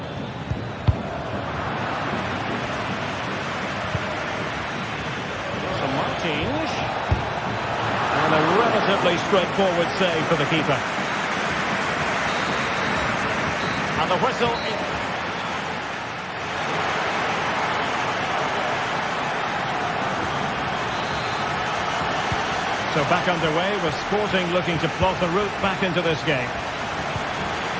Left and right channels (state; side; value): identical; both; correlation 1.00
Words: So Martins. And a relatively straightforward save for the keeper. And the whistle is... So back underway with Sporting looking to plot the route back into this game.